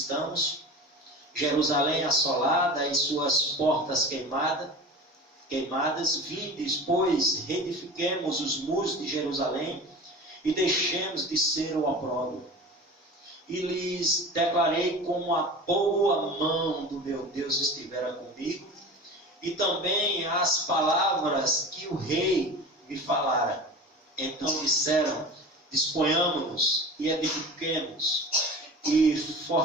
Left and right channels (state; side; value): normal; both; correlation 0.35